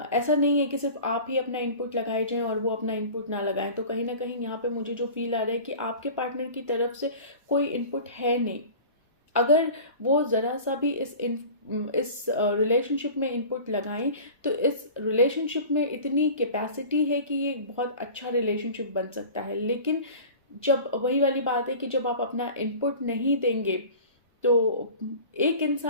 नहीं है कि सिर्फ आप ही अपना इनपुट लगाए जाएं और वो अपना इनपुट ना लगाएं। तो कहीं ना कहीं यहाँ पे मुझे जो फील आ रहा है कि आपके पार्टनर की तरफ से कोई इनपुट है नहीं। अगर वो ज़रा सा भी इस रिलेशनशिप में इनपुट लगाएं तो इस रिलेशनशिप में इतनी कैपेसिटी है कि ये बहुत अच्छा रिलेशनशिप बन सकता है। लेकिन जब वही वाली बात है कि जब आप अपना इनपुट नहीं देंगे तो एक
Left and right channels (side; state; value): both; inverted; correlation -0.39